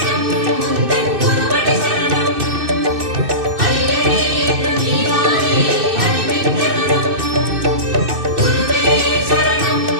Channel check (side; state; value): left; late; 2.6 ms